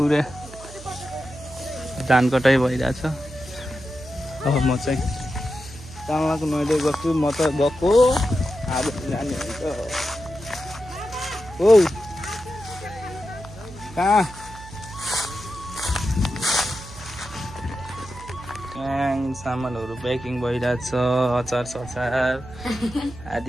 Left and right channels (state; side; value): noise; right; hum, 16 dB below the sound